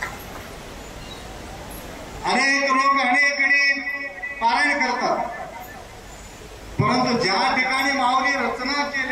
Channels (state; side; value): identical; both; correlation 1.00